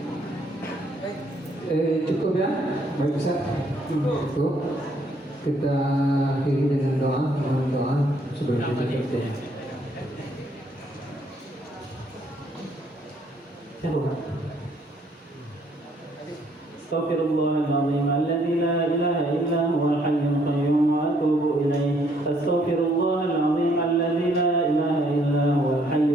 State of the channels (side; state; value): both; normal; correlation 0.67